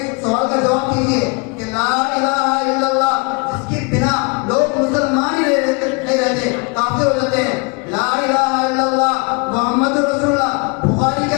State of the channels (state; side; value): quieter; right; 31.1 dB